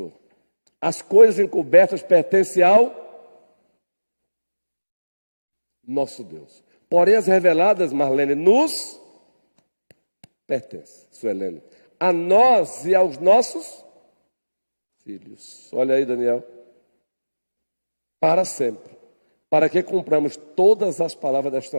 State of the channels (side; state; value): both; inverted; correlation -1.00